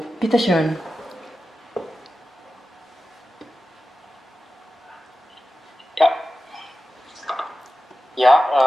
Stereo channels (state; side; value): normal; both; correlation 0.93